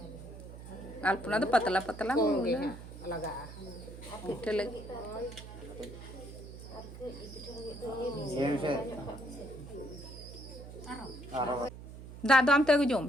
अल्पना तो पतला पतला लगा पिठे लगी दा दो आम ते अगु जोम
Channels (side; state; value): right; noise; hum, 13 dB below the sound